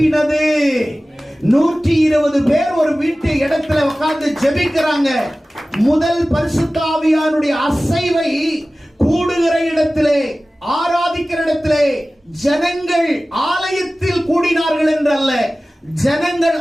120 பேர் ஒரு வீட்டு இடத்துல உட்கார்ந்து ஜெபிக்கிறாங்க. முதல் பரிசுத்த ஆவியானுடைய அசைவை கூடுகிற இடத்திலே, ஆராதிக்கிற இடத்திலே ஜனங்கள் ஆலயத்தில் கூடினார்கள் என்றல்ல, ஜனங்கள்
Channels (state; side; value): normal; both; correlation 0.97